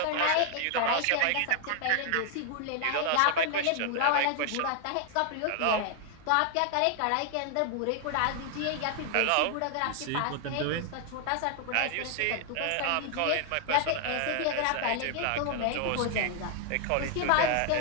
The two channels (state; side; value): different; both; correlation 0.00